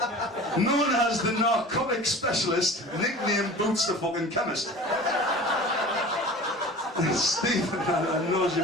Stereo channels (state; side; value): normal; both; correlation 0.39